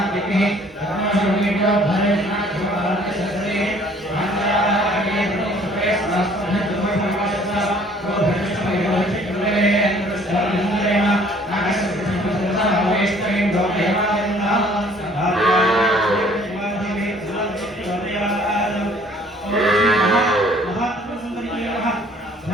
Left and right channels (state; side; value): normal; both; correlation 0.57